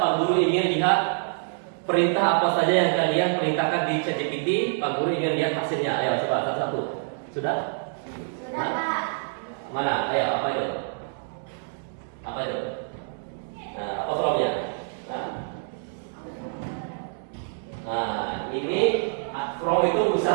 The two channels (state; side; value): silent; left; digital silence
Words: Guru ingin lihat perintah apa saja yang kalian perintahkan di ChatGPT. Pak Guru ingin lihat hasilnya. Ayo coba satu-satu. Sudah? Sudah, Pak. Mana? Ayo, apa itu? Apa itu? Nah, apa from-nya? Nah, ini from itu